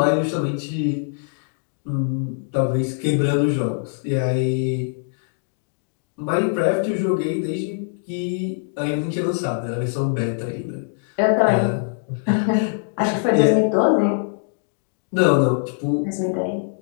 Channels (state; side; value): silent; right; digital silence